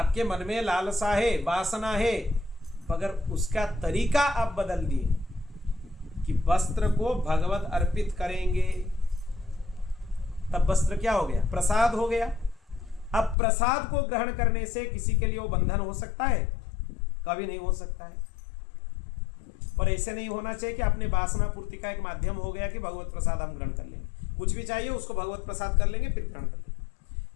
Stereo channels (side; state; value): right; drops out; at 13.4 s